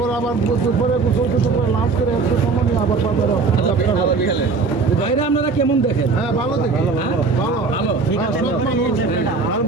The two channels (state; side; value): quieter; left; 4.3 dB